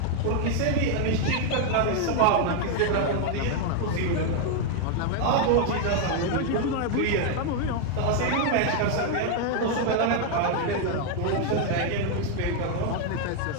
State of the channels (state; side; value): different; both; correlation 0.00